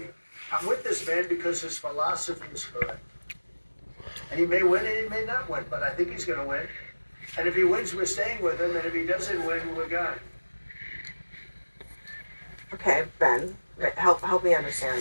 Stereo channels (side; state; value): both; inverted; correlation -1.00